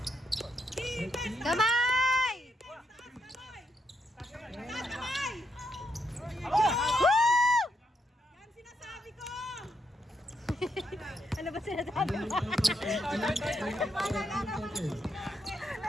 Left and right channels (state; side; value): normal; both; correlation 0.79